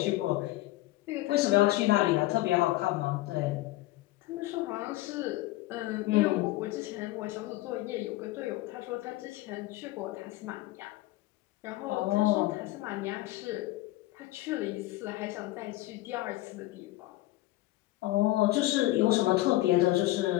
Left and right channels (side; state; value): right; quieter; 17.5 dB